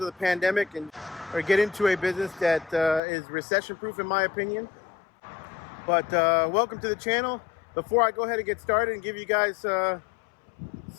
of the pandemic, and or get into a business that is recession-proof, in my opinion. But welcome to the channel. Before I go ahead and get started and give you guys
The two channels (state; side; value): drops out; right; at 3.0 s